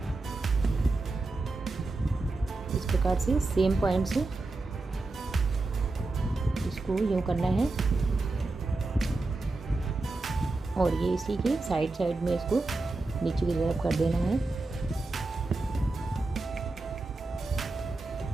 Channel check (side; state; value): left; quieter; 3.3 dB